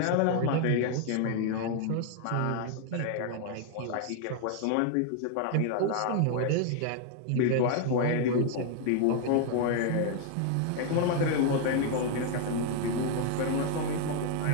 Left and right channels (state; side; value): different; both; correlation 0.00